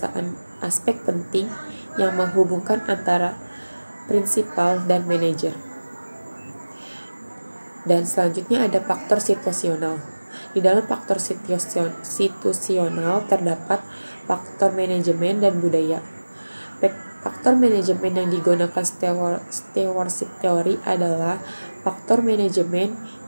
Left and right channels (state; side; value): inverted; both; correlation -1.00